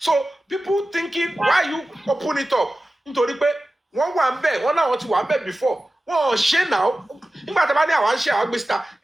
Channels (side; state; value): both; normal; correlation 0.95